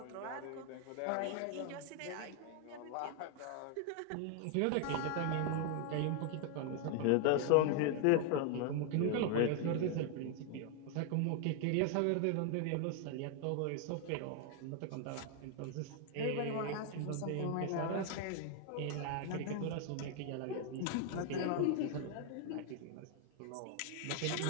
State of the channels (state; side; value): different; both; correlation 0.01